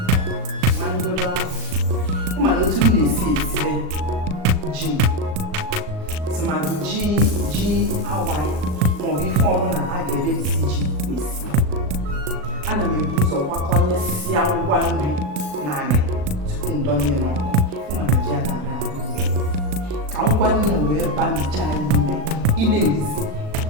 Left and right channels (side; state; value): left; late; 38 ms